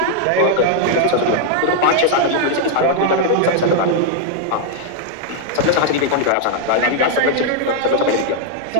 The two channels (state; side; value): different; both; correlation 0.00